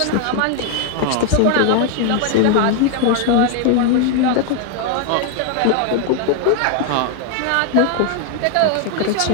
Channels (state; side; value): different; both; correlation 0.00